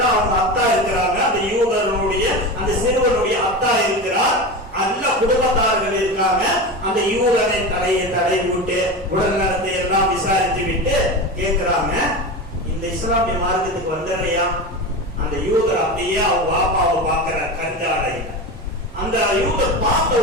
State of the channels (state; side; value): normal; both; correlation 0.25